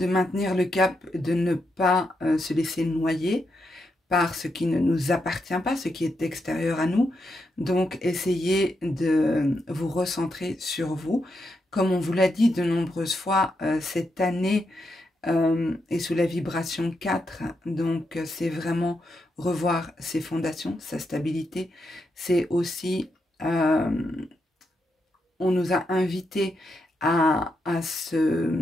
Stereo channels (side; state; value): both; normal; correlation 0.83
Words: maintenir le cap, de ne pas se laisser noyer par ce qui ne nous appartient pas, ce qui est extérieur à nous. Donc, essayez de vous recentrer sur vous. Comme on vous l'a dit de nombreuses fois, cette année est sous la vibration 4. Donc, c'est vraiment revoir ses fondations, sa stabilité. C'est aussi, on nous a invités à